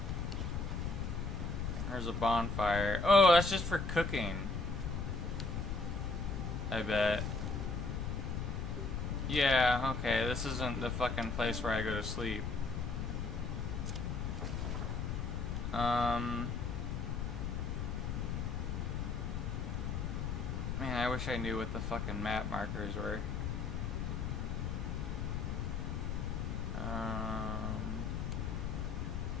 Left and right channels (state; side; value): noise; left; rumble, 2 dB below the sound